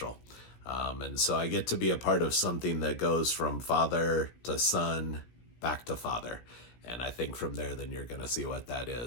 And so I get to be a part of something that goes from father to son back to father. And I think from there, then you're going to see what that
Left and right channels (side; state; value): right; late; 17 ms